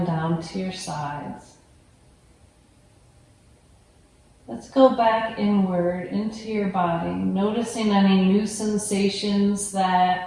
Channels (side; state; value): both; identical; correlation 1.00